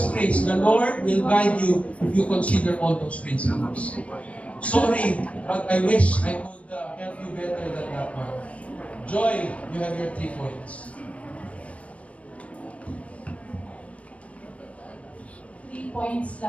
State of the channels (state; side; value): late; right; 0.064 ms